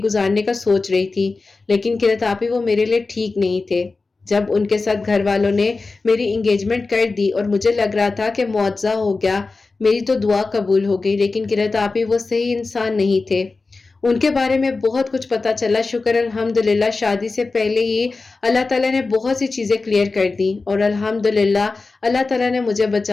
گزارنے کا سوچ رہی تھی، لیکن قرت آپی وہ میرے لیے ٹھیک نہیں تھے. جب ان کے ساتھ گھر والوں نے میری انگیجمنٹ کر دی اور مجھے لگ رہا تھا کہ معجزہ ہو گیا، میری تو دعا قبول ہو گئی، لیکن قرت آپی وہ صحیح انسان نہیں تھے. ان کے بارے میں بہت کچھ پتا چلا. شکر الحمدللہ شادی سے پہلے ہی اللہ تعالیٰ نے بہت سی چیزیں کلیئر کر دی اور الحمدللہ اللہ تعالیٰ نے مجھے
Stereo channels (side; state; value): right; quieter; 3.8 dB